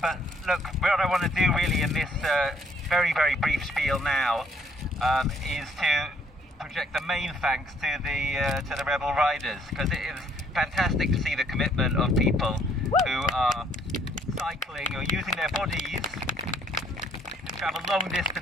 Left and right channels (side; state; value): both; normal; correlation 0.65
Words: But look, what I want to do really in this very, very brief spiel now is to project the main thanks to the Rebel Riders, because it is fantastic to see the commitment of people who are cycling or using their bodies to travel long